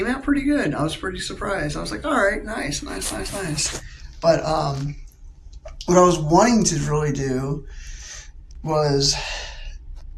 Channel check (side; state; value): both; identical; correlation 1.00